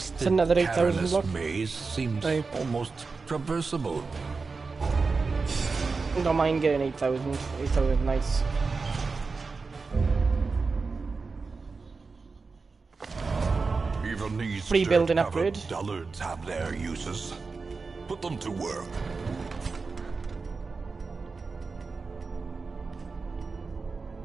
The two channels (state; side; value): quieter; left; 4.4 dB